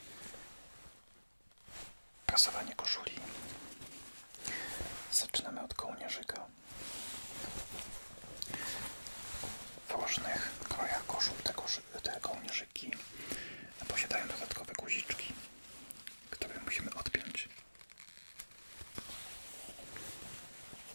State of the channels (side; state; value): both; inverted; correlation -1.00